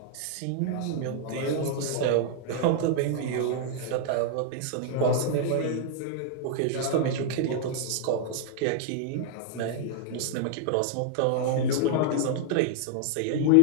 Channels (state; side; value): different; both; correlation -0.01